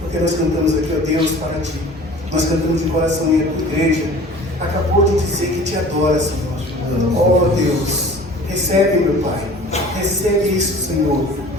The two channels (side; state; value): both; normal; correlation 0.45